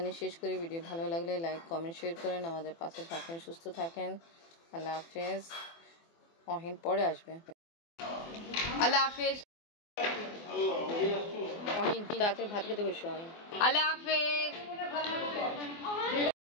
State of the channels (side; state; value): right; late; 24 ms